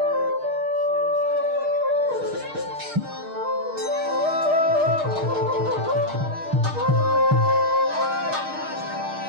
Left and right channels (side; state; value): left; late; 6.5 ms